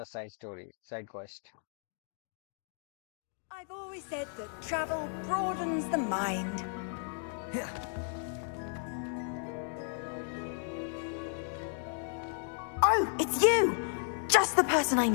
side quest. I've always said that travel broadens the mind. Oh, it's you! Just the person I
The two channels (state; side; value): silent; right; 55 dB below the other